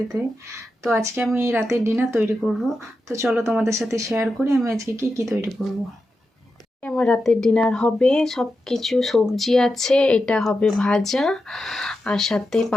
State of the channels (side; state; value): both; normal; correlation 0.89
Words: তো আজকে আমি রাতের ডিনার তৈরি করব। তো চলো তোমাদের সাথে শেয়ার করি আমি আজকে কি তৈরি করব। আমার রাতের ডিনার হবে সব কিছু সবজি আছে, এটা হবে ভাজা, আর সাথে